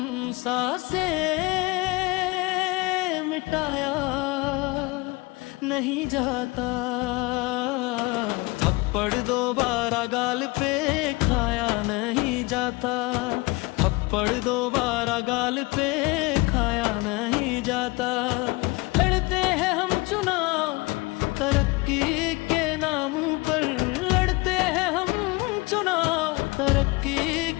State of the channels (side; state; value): right; quieter; 24.4 dB